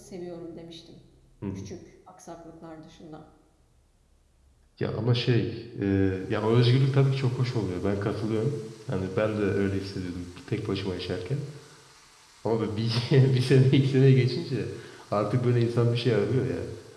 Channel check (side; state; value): both; identical; correlation 1.00